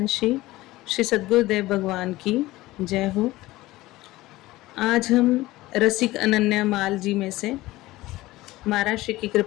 श्री सद्गुरुदेव भगवान की जय हो। आज हम रसिक अनन्या माल जी में से महाराज श्री की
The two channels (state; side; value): quieter; right; 18.1 dB